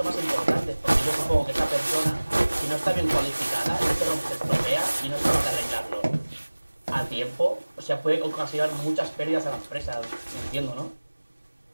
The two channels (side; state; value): both; inverted; correlation -1.00